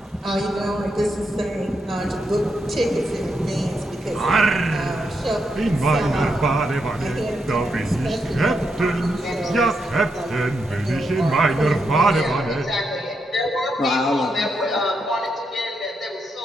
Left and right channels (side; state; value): both; normal; correlation 0.82